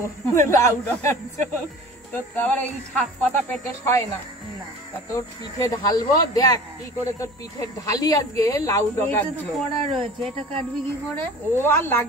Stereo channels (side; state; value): both; normal; correlation 0.42